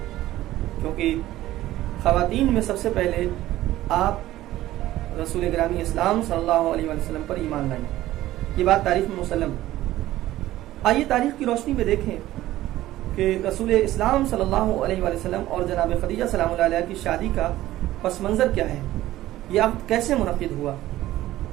کیونکہ خواتین میں سب سے پہلے آپ رسول گرامی اسلام صلی اللہ علیہ وسلم پر ایمان لائیں۔ یہ بات تاریخ میں مسلم۔ آئیے تاریخ کی روشنی میں دیکھیں کہ رسول اسلام صلی اللہ علیہ وسلم اور جناب خدیجہ سلام اللہ علیہ کی شادی کا پس منظر کیا ہے، یہ عقد کیسے منعقد ہوا۔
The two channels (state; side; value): quieter; left; 15.2 dB